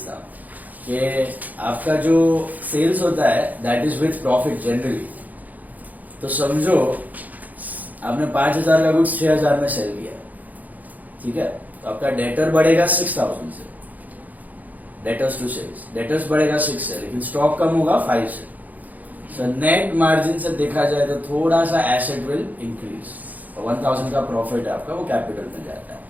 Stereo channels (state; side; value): late; left; 0.080 ms